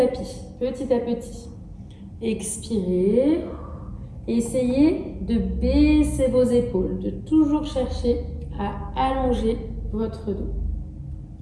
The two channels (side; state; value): both; identical; correlation 1.00